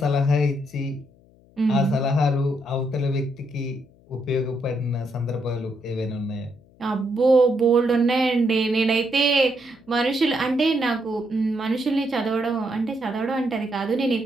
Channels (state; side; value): noise; left; hum, 29 dB below the sound